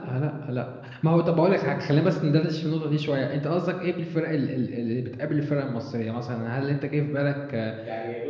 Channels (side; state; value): both; identical; correlation 1.00